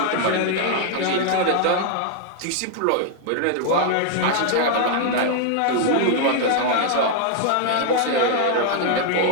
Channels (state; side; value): different; both; correlation 0.00